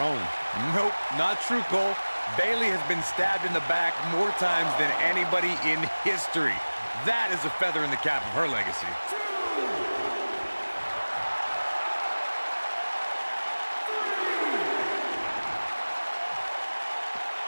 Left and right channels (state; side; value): inverted; both; correlation -1.00